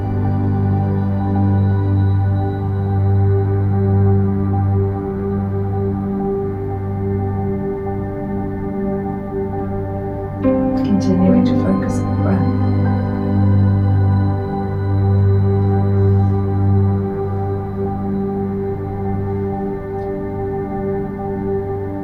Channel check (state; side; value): identical; both; correlation 1.00